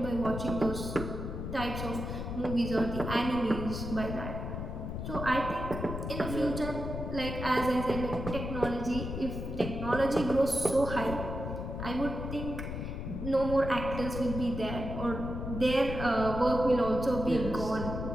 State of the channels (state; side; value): noise; left; rumble, 5 dB below the sound